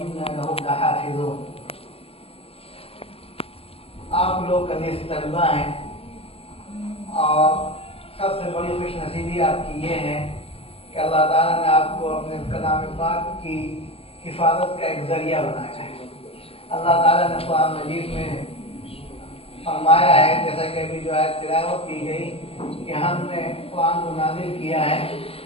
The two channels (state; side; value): late; right; 0.28 ms